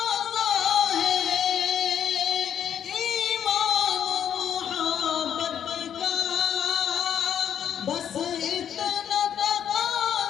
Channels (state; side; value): quieter; right; 9.1 dB